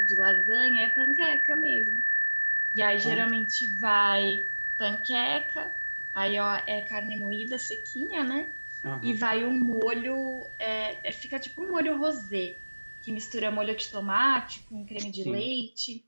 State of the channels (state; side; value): inverted; both; correlation -1.00